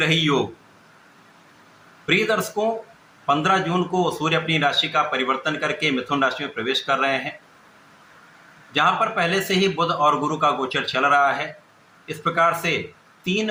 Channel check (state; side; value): identical; both; correlation 1.00